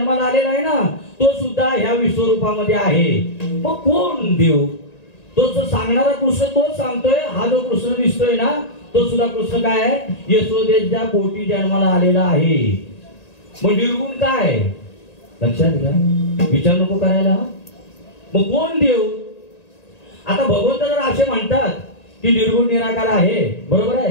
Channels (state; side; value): late; right; 1.9 ms